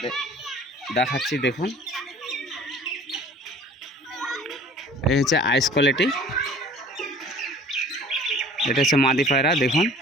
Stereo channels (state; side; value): normal; both; correlation 0.47